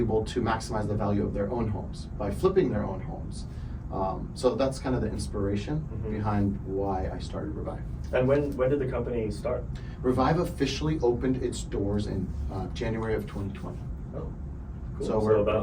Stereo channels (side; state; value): both; identical; correlation 1.00